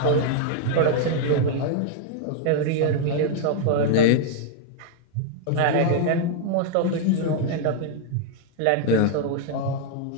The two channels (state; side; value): different; both; correlation 0.00